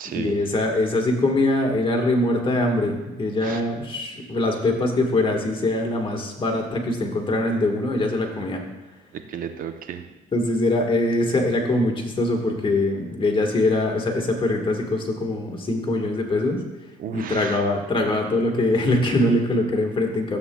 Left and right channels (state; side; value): normal; both; correlation 0.64